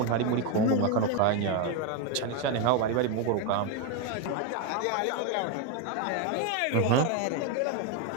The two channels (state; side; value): different; both; correlation 0.02